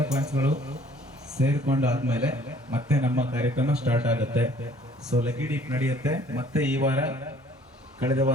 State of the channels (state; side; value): normal; both; correlation 0.56